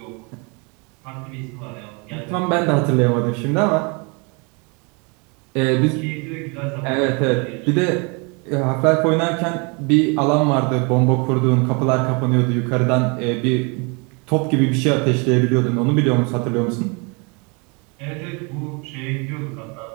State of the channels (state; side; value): quieter; left; 31.6 dB